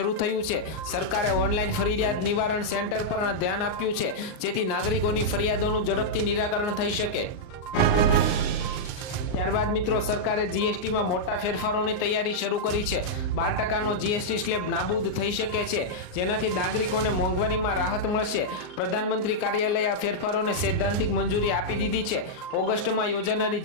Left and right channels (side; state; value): right; late; 39 ms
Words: થયું છે. સરકારે ઓનલાઈન ફરિયાદ નિવારણ સેન્ટર પર ધ્યાન આપ્યું છે, જેથી નાગરિકોની ફરિયાદોનું ઝડપથી નિરાકરણ થઈ શકે. ત્યારબાદ મિત્રો સરકારે જીએસટીમાં મોટા ફેરફારોની તૈયારી શરૂ કરી છે. 12% જીએસટી સ્લેબ નાબૂદ થઈ શકે છે, જેનાથી નાગરિકોને મોંઘવારીમાં રાહત મળશે. પ્રધાનમંત્રી કાર્યાલય આ ફેરફારોને સૈદ્ધાંતિક મંજૂરી આપી દીધી છે. ઓગસ્ટમાં યોજાનારી